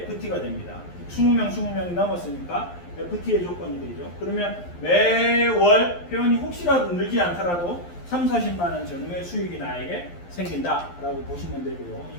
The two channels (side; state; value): right; late; 11 ms